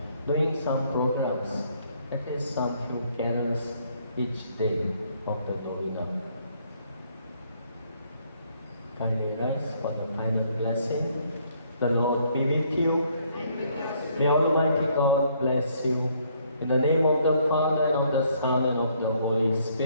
doing some programs, at least some few carols each day of the novena. Kindly rise for the final blessing. The Lord be with you. May Almighty God bless you. In the name of the Father, and of the Son, and of the Holy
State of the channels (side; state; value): both; inverted; correlation -0.67